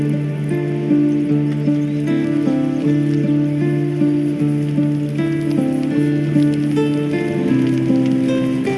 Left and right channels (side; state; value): both; identical; correlation 1.00